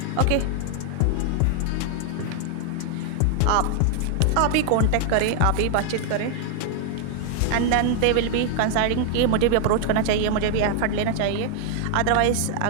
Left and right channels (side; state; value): both; different; correlation 0.00